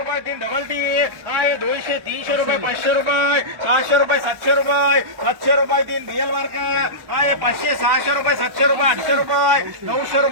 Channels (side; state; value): left; late; 1.1 ms